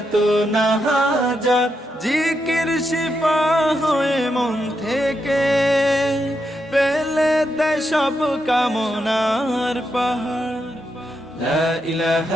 না হাজার জিকির শিফা হয়ে মন থেকে ফেলে দেয় সব কামনার পাহাড় لا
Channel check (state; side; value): normal; both; correlation 0.83